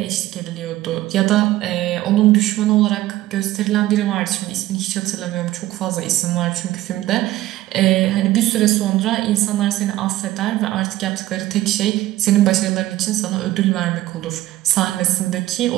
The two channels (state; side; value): quieter; left; 15.6 dB